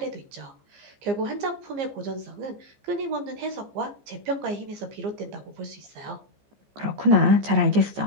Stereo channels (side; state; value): left; late; 14 ms